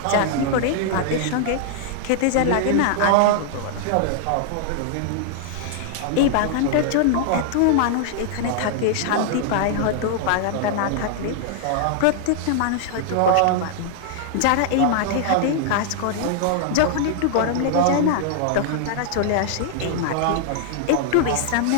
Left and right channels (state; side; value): different; both; correlation -0.01